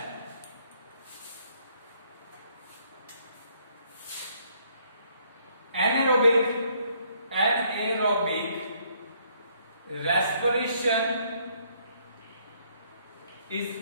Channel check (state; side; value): inverted; both; correlation -0.68